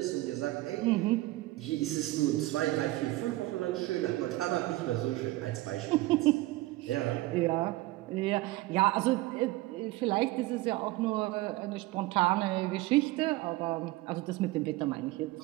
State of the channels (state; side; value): quieter; left; 18.9 dB